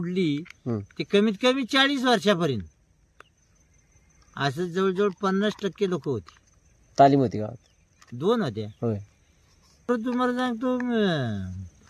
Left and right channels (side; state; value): both; identical; correlation 1.00